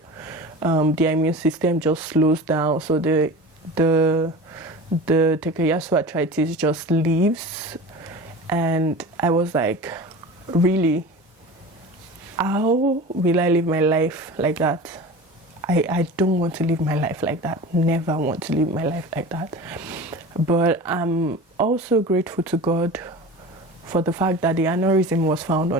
their immune system just slows down, so the Takayasu arthritis just leaves. And I was like, really, how will I live my life like that? I don't want to live my life like that. Never want to live my life like that. But I'm also grateful to God for the fact that the aneurysm was found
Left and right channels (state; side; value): normal; both; correlation 0.34